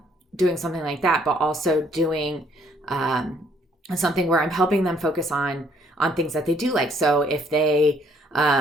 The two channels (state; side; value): normal; both; correlation 0.65